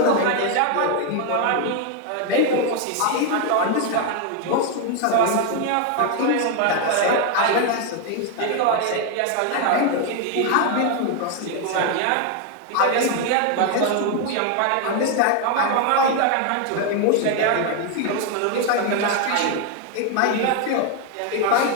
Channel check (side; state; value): both; different; correlation 0.01